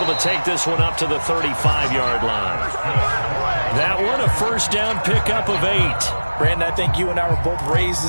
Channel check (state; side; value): inverted; both; correlation -1.00